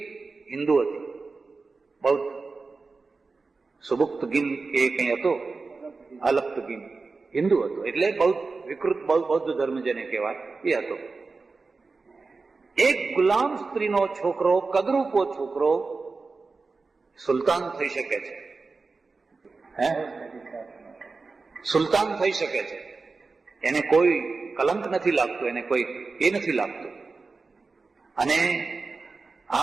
હિન્દુ હતી, બૌદ્ધ. સુબુક્તગીન કે કઈ હતો, અલપ્તગીન હિન્દુ હતો, એટલે બૌદ્ધ, વિકૃત બૌદ્ધ ધર્મ જેને કહેવાય એ હતો. એક ગુલામ સ્ત્રીનો છોકરો, કદરૂપો છોકરો સુલતાન થઈ શકે છે. સુલતાન થઈ શકે છે. એને કોઈ કલંક નથી લાગતું, એને કોઈ એ નથી લાગતું. અને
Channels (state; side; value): quieter; left; 4.1 dB